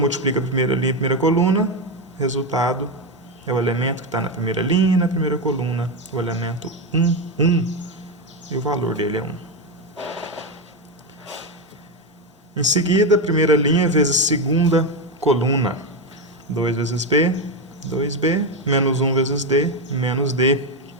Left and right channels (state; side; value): normal; both; correlation 0.11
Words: a primeira linha e a primeira coluna, resultado é o elemento que está na primeira linha e na primeira coluna, o elemento 1, 1, e o valor dele é 1. Em seguida, primeira linha vezes segunda coluna, 2 vezes B, 2B, menos 1 vezes D, menos D.